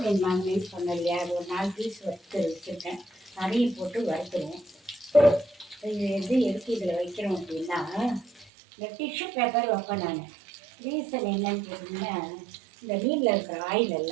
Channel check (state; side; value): drops out; left; at 8.5 s